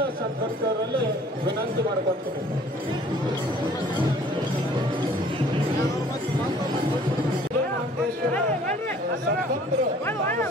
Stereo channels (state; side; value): normal; both; correlation 0.54